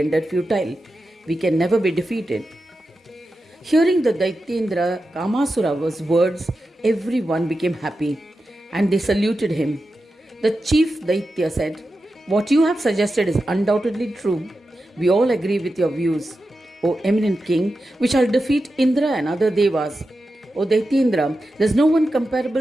futile. We can never be defeated." Hearing the Daityendra Kamasura's words, everyone became happy and they saluted him. The chief Daitya said, "What you have suggested is undoubtedly true. We all agree with your views. O eminent king, we shall defeat Indra and other devas. O Daityendra, there is no one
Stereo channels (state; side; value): normal; both; correlation 0.91